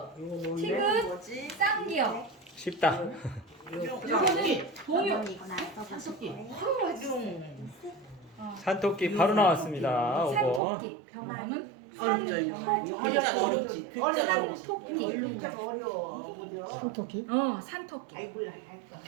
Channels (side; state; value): left; drops out; at 10.6 s